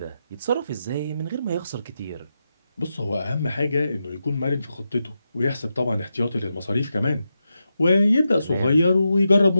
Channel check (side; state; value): both; inverted; correlation -0.88